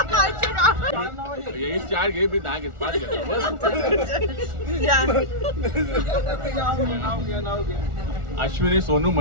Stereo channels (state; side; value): late; left; 1.4 ms